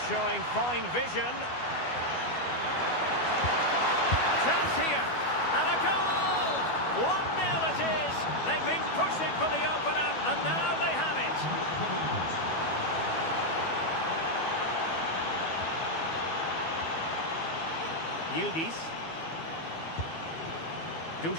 showing fine vision. Chance here. And a goal! 1-0 it is. They've been pushing for the opener, and now they have it. Yildiz.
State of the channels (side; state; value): right; late; 12 ms